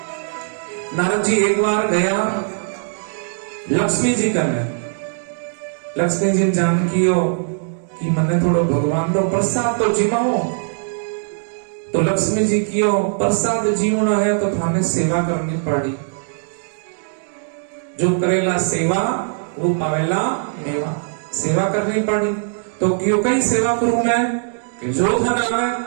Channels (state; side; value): silent; left; digital silence